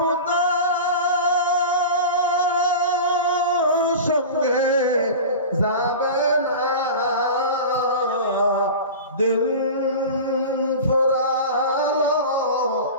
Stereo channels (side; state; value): both; inverted; correlation -0.31